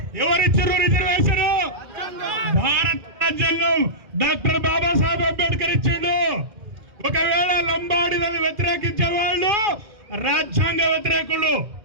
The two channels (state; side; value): late; left; 2.4 ms